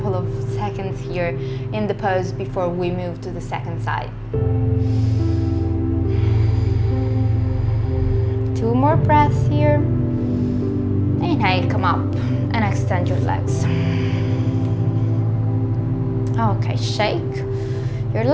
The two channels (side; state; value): both; identical; correlation 1.00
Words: of seconds here in the pose before we move to the second side. 2 more breaths here. Inhale, come up and extend your legs. Okay, shake your